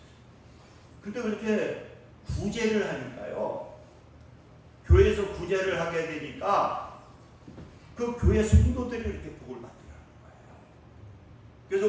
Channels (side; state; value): both; identical; correlation 1.00